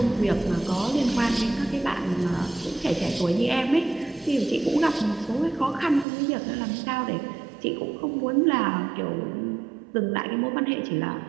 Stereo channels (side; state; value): left; drops out; at 6.1 s